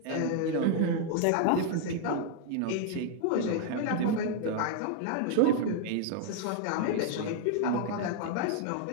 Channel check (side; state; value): both; different; correlation 0.00